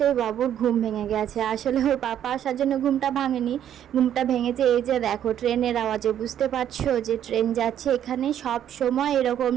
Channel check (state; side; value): quieter; left; 10.3 dB